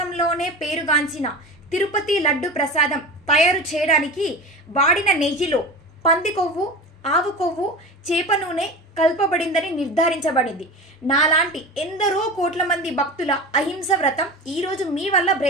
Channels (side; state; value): both; normal; correlation 0.31